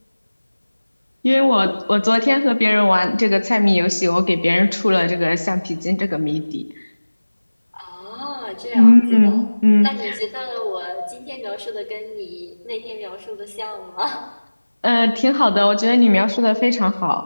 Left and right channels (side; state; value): both; inverted; correlation -1.00